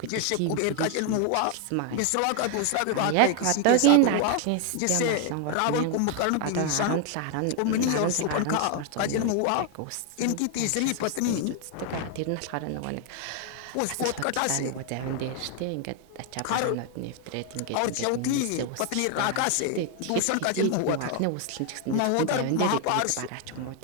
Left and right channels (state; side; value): different; both; correlation 0.00